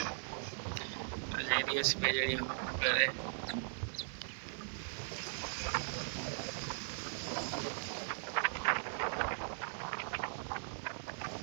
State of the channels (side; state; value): left; silent; 52 dB below the other